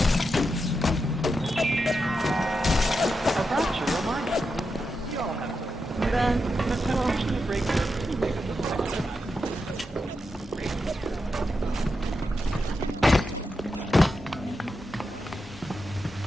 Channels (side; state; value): both; normal; correlation 0.87